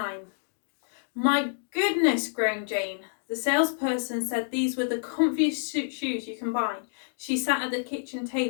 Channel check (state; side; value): silent; right; digital silence